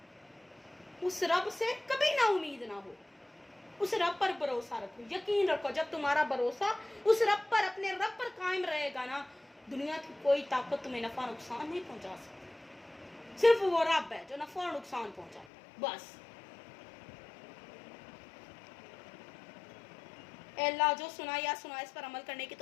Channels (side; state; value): right; drops out; at 15.5 s